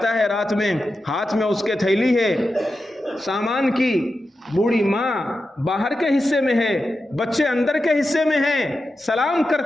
ہے رات میں، ہاتھ میں اس کے تھیلی ہے سامان کی، بوڑھی ماں باہر کے حصے میں ہے، بچے اندر کے حصے میں ہیں، سلام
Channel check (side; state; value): both; normal; correlation 0.91